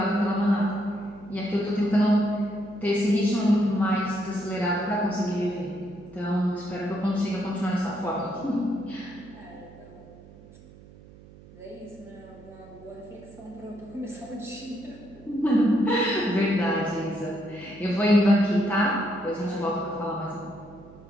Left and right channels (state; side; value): noise; right; hum, 21 dB below the sound